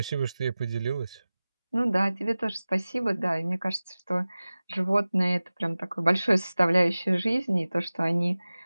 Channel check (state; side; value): inverted; both; correlation -0.98